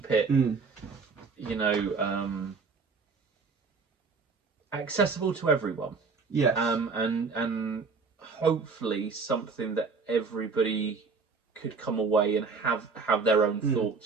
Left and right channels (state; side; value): quieter; left; 4.7 dB